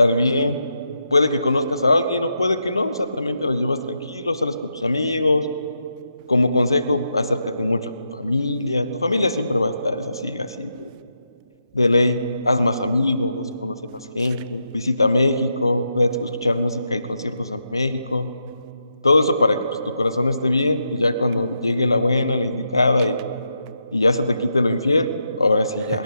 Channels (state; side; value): inverted; both; correlation -0.84